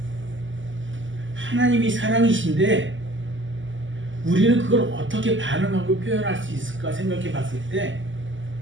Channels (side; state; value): left; late; 0.55 ms